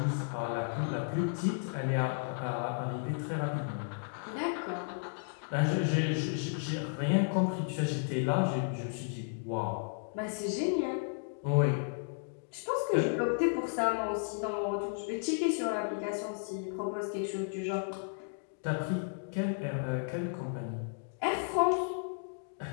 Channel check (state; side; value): silent; right; digital silence